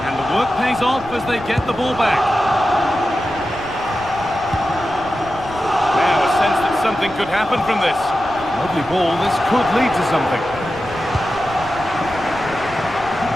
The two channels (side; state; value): right; noise; rumble, 19 dB below the sound